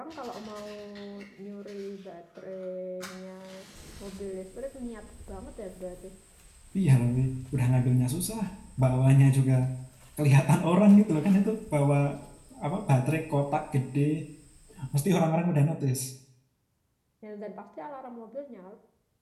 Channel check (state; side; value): identical; both; correlation 1.00